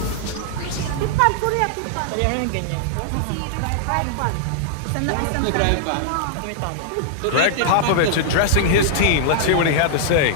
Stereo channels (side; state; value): both; different; correlation -0.01